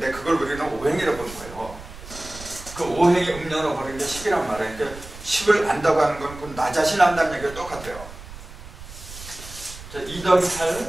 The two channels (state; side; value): noise; right; rumble, 15 dB below the sound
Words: 그걸 우리는 오행이라고 보는 거예요. 그 오행이 음량으로 버리는 게 10이란 말이에요. 그러니까 10을 안다고 하는 건 나 자신 안다는 얘기가 똑같아요. 자, 2 더하기